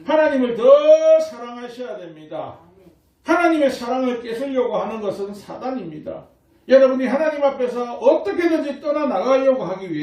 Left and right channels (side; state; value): both; identical; correlation 1.00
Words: 하나님을 더 사랑하셔야 됩니다. 하나님의 사랑을 뺏으려고 하는 것은 사단입니다. 여러분이 하나님 앞에서 어떻게든지 떠나나가려고 하기